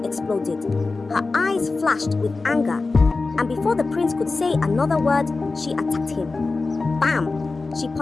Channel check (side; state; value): right; quieter; 3.8 dB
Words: exploded. Her eyes flashed with anger, and before the prince could say another word, she attacked him. Bam! She